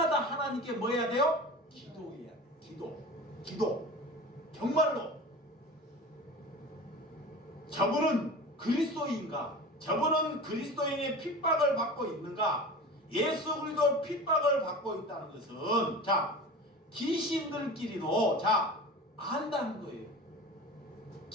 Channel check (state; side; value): normal; both; correlation 0.34